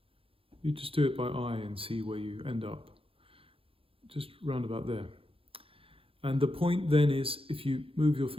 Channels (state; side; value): late; left; 0.27 ms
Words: You just do it by eye and see where you end up. Just round about there. And the point then is, if you move your